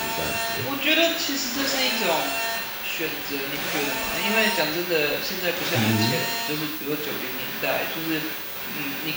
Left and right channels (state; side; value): identical; both; correlation 1.00